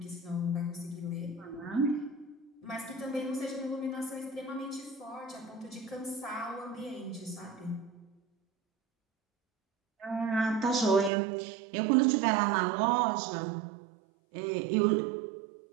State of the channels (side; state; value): left; drops out; at 11.1 s